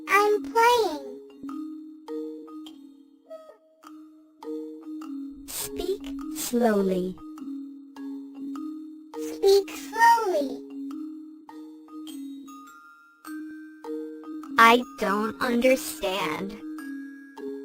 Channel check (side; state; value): both; identical; correlation 1.00